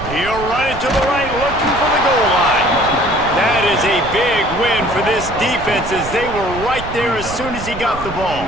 He'll run it to the right, looking for the goal line. That is a big win for this defense, as they were right there as soon as he got the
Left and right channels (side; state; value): right; noise; rumble, 11 dB below the sound